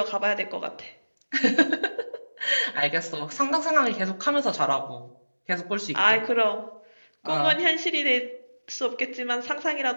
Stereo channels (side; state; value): both; inverted; correlation -1.00